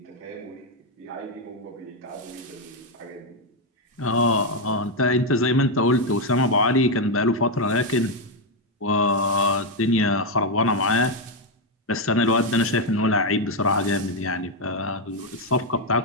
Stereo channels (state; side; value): normal; both; correlation 0.03